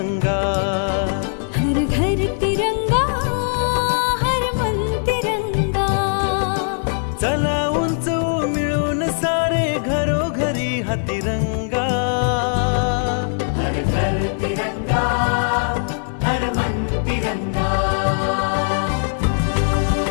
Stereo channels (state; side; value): silent; right; digital silence